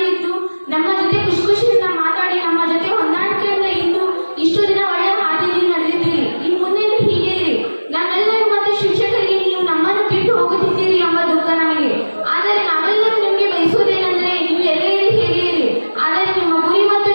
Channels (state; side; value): inverted; both; correlation -1.00